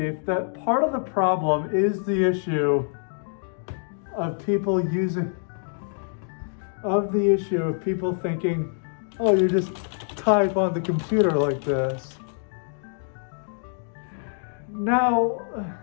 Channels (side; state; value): right; silent; 61 dB below the other